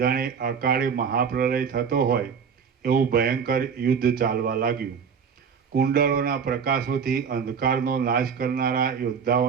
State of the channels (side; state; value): left; quieter; 6.6 dB